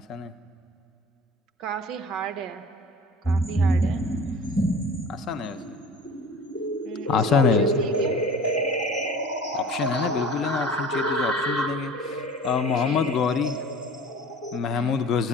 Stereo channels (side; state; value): both; normal; correlation 0.41